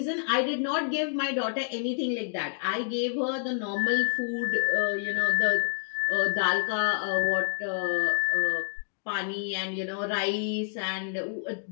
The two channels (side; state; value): right; silent; digital silence